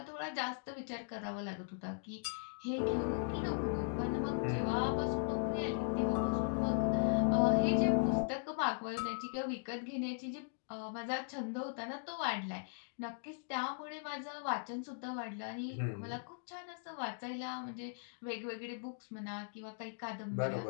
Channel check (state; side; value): silent; right; digital silence